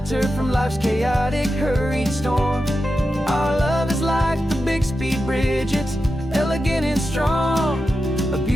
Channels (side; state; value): both; normal; correlation 0.90